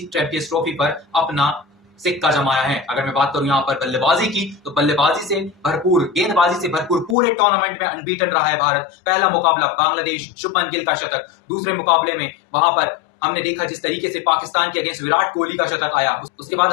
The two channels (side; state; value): right; drops out; at 7.2 s